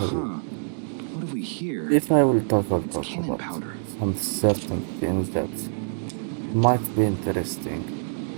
have we here? If I will talk It's cannon about powder. some certain things that might be interesting,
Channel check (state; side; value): silent; left; digital silence